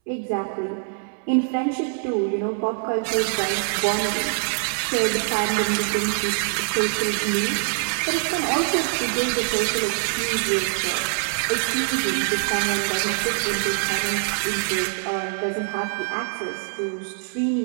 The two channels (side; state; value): left; silent; 63 dB below the other